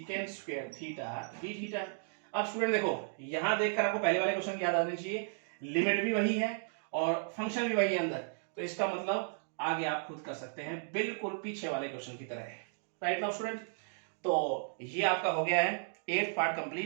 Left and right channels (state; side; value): silent; left; digital silence